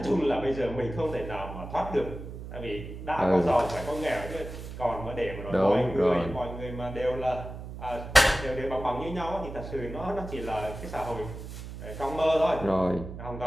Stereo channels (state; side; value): noise; right; hum, 10 dB below the sound